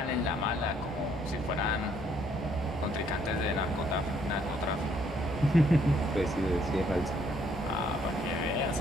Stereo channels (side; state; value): both; normal; correlation 0.67